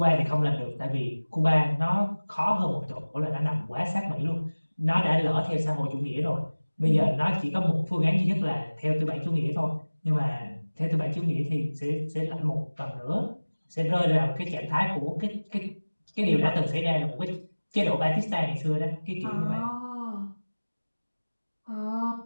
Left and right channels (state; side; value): inverted; both; correlation -1.00